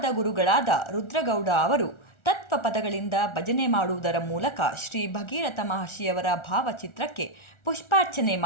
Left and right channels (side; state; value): right; late; 1.4 ms